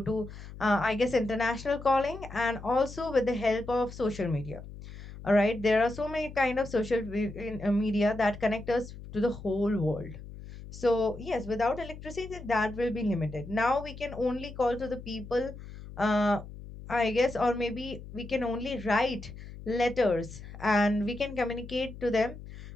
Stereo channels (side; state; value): left; noise; hum, 14 dB below the sound